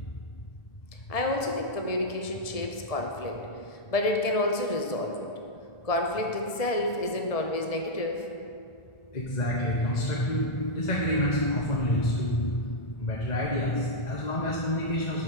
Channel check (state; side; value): late; right; 1.7 ms